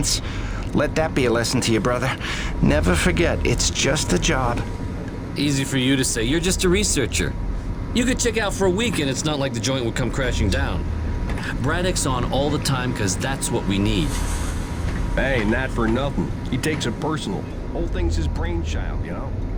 Let that be a lesson to you, brother. Never forget, it's just a job. Easy for you to say. You're just a researcher. You could check out for a week and it's not like the joint would come crashing down. Braddock's on all the time because that's what we need. Hey, not for nothing. He takes it personal. Whole thing's his brainchild, you know?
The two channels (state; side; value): identical; both; correlation 1.00